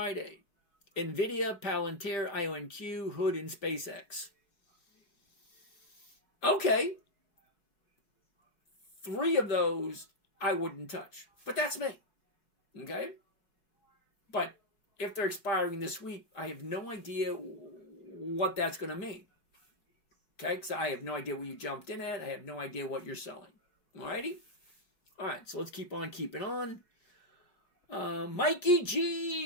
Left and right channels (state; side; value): late; right; 5.0 ms